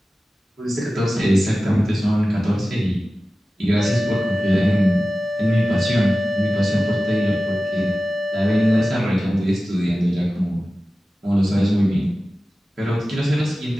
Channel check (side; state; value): both; normal; correlation 0.95